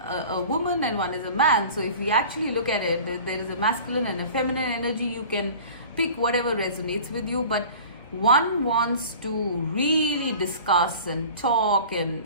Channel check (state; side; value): inverted; both; correlation -0.42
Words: a woman and one is a man. So if we actually look at it, there is a masculine and a feminine energy. You can pick whatever resonates with you, but one wants to really discuss and talk and